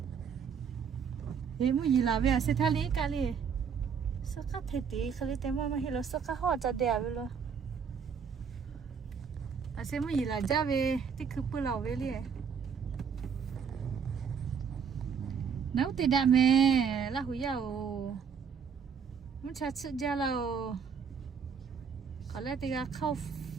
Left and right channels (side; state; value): left; quieter; 6.6 dB